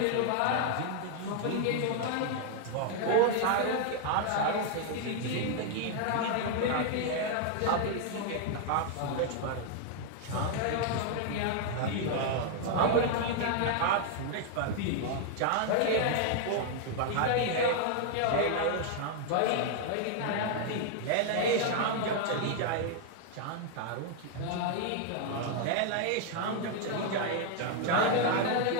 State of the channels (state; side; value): different; both; correlation 0.00